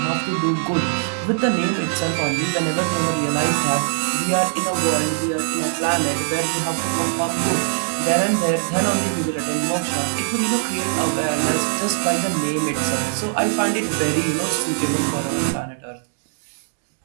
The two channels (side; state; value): left; silent; digital silence